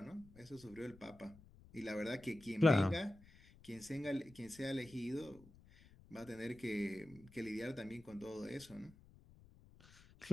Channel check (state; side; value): noise; left; rumble, 22 dB below the sound